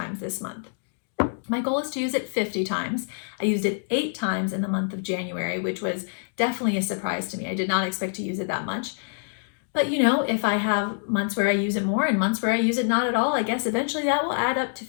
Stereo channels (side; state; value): right; silent; digital silence